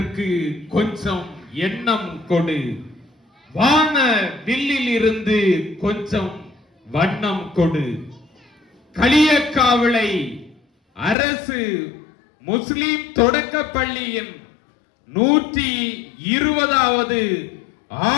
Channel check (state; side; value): drops out; right; at 11.2 s